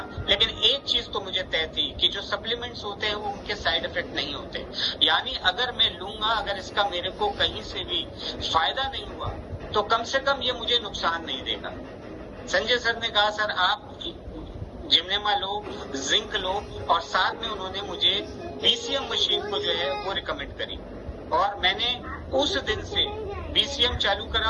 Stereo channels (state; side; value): identical; both; correlation 1.00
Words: लेकिन एक चीज तो मुझे तय थी कि जो सप्लीमेंट्स होते हैं वो उनके साइड इफेक्ट नहीं होते। यानी अगर मैं लूंगा, अगर इसका मेरे को कहीं से भी फायदा नहीं हुआ तो कम से कम ये मुझे नुकसान नहीं देगा। संजय सर ने कहा सर आप जिम्नेमा लो, जिंक लो, और साथ में उन्होंने मुझे बीसीएम मशीन को जो है वो रिकमेंड करी। और मैंने उस दिन से बीसीएम चालू